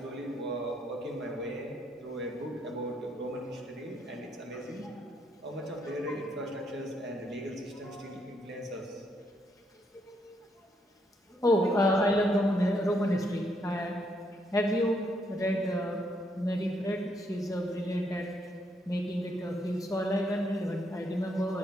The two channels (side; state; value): both; normal; correlation 0.75